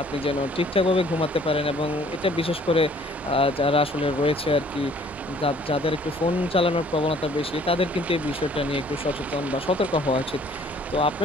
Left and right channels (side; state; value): both; normal; correlation 0.57